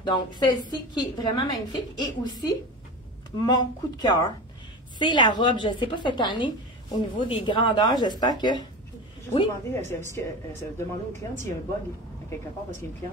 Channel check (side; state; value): both; normal; correlation 0.28